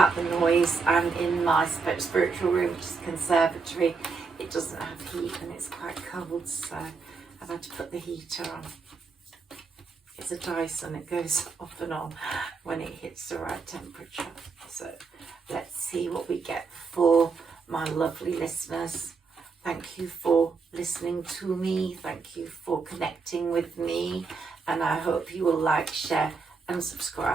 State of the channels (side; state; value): left; quieter; 4.8 dB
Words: the noise. I'm in my spiritual room, which is a conservatory. It doesn't have heat and it's quite cold, so I've had to put the heater on. It's a Dyson, it goes off and on when it hits the right temperature. So let's see what we get for my lovely listeners. Thank you for listening to me. Thank you for connecting with me. And I hope you will like, share and